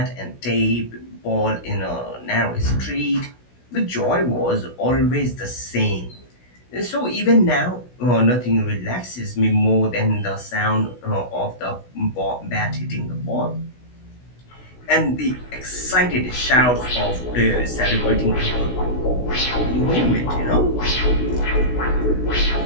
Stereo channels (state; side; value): late; right; 16 ms